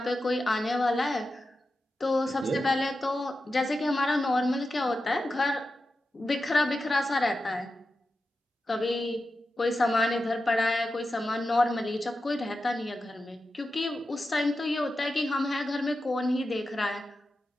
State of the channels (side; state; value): both; normal; correlation 0.91